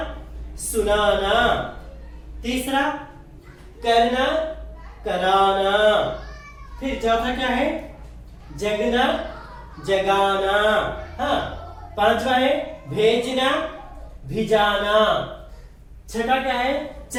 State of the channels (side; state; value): both; identical; correlation 1.00